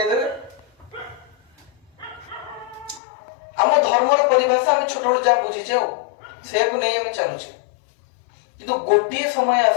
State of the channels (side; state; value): right; drops out; at 3.0 s